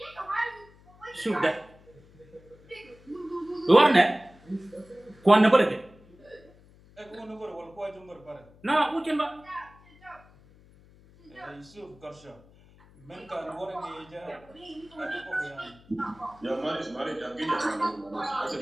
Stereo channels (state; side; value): noise; left; hum, 25 dB below the sound